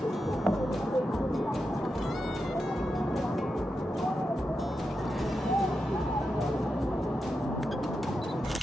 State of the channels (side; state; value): both; normal; correlation 0.88